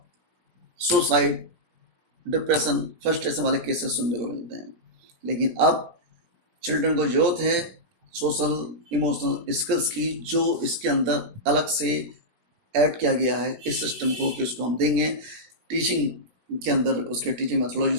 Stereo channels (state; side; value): late; left; 17 ms